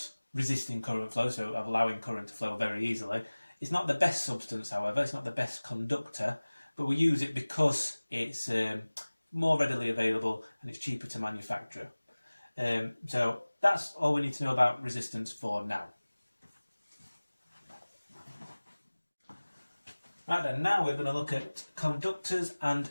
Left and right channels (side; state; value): both; inverted; correlation -1.00